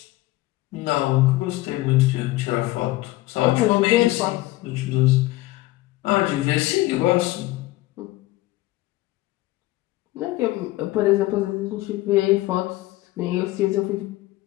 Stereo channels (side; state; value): right; quieter; 18.2 dB